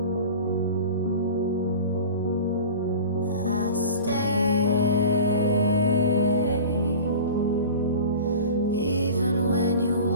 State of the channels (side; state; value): both; inverted; correlation -0.37